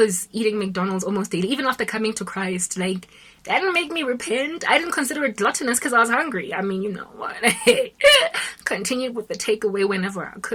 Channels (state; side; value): identical; both; correlation 1.00